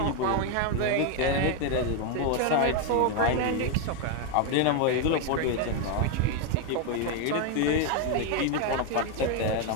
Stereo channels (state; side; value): different; both; correlation 0.01